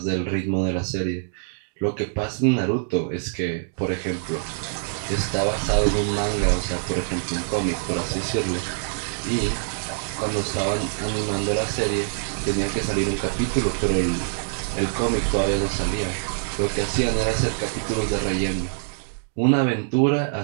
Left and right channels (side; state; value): left; silent; digital silence